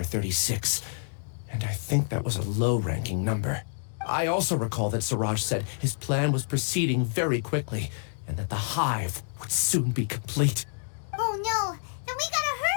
36, and I think that was a low-ranking number. I also recall that Siraj said his plan was proceeding very quickly, and that the hive would soon be complete. Oh no, then we gotta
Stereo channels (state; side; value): silent; right; digital silence